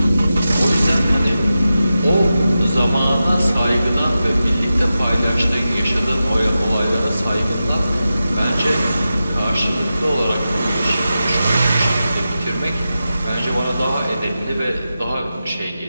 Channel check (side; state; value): both; inverted; correlation -0.92